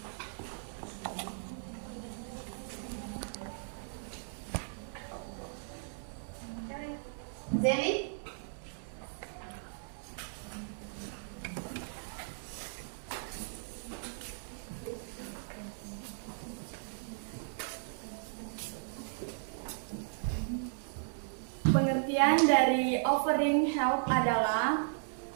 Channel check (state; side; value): silent; left; digital silence